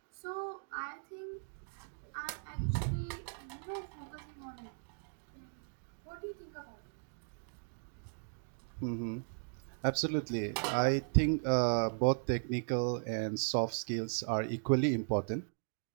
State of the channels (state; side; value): silent; left; digital silence